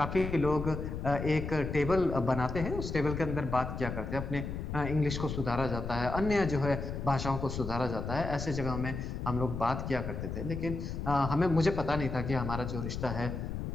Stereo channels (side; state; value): left; noise; rumble, 5 dB below the sound